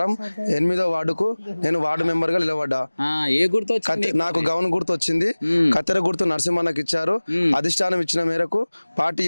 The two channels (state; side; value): inverted; both; correlation -1.00